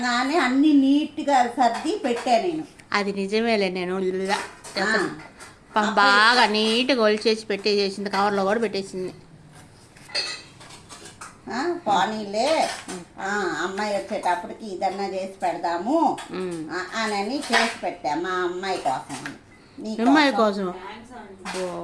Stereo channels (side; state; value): both; identical; correlation 1.00